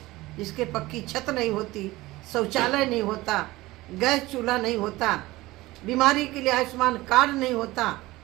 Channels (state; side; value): quieter; left; 19.0 dB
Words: जिसके पक्की छत नहीं होती, शौचालय नहीं होता, गैस चूल्हा नहीं होता, बीमारी के लिए आयुष्मान कार्ड नहीं होता।